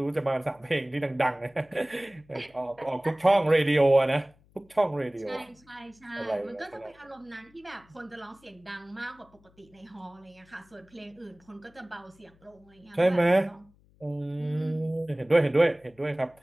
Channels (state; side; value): noise; left; hum, 30 dB below the sound